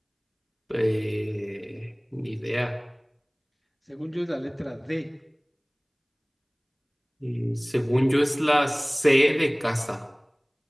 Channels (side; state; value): both; identical; correlation 1.00